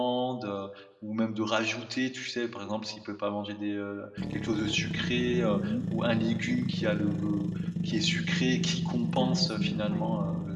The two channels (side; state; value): both; identical; correlation 1.00